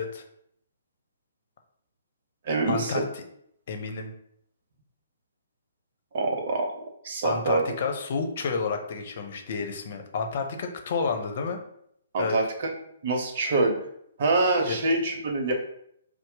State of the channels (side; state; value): both; inverted; correlation -0.59